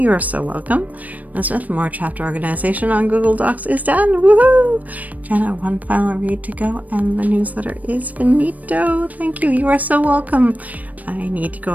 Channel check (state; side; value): late; left; 0.074 ms